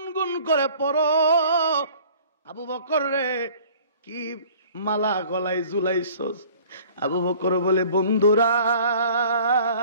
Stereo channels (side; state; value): both; inverted; correlation -0.50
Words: করে পড়ো। আবু বকর রে, কি মালা গলায় ঝুলাইছস? আবু বকর বলে, বন্ধুরা,